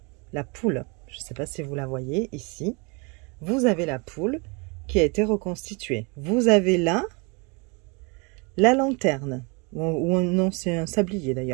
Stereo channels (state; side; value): quieter; left; 30.8 dB